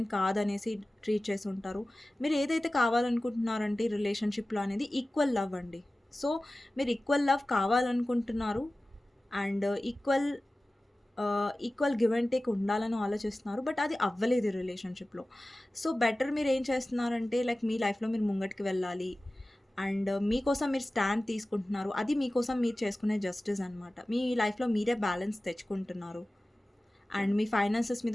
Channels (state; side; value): normal; both; correlation 0.96